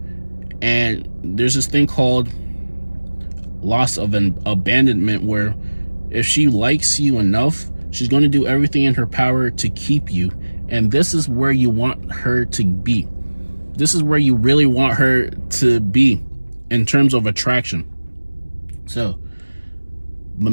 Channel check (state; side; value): inverted; both; correlation -1.00